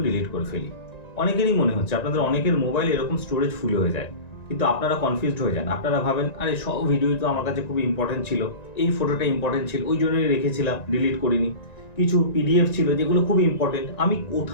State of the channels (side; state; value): right; late; 1.9 ms